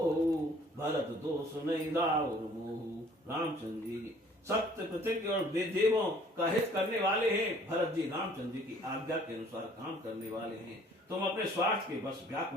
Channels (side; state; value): both; normal; correlation 0.56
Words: भरत दोष नहीं राउर मोहु। रामचंद्र जी सत्य प्रतिज्ञ और देवों का हित करने वाले हैं। भरत जी रामचंद्र जी की आज्ञा के अनुसार काम करने वाले हैं। तुम अपने स्वार्थ के बस